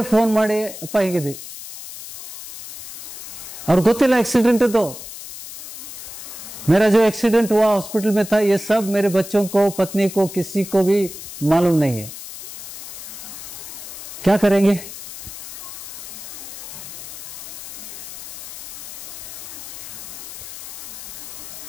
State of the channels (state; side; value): noise; left; hiss, 11 dB below the sound